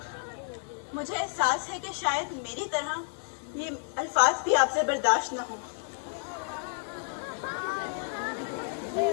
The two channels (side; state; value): right; silent; 58 dB below the other